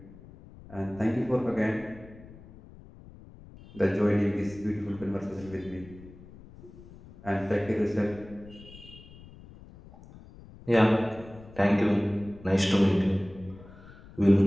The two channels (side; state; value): left; noise; rumble, 20 dB below the sound